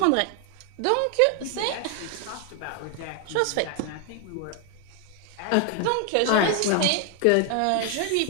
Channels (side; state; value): both; different; correlation 0.01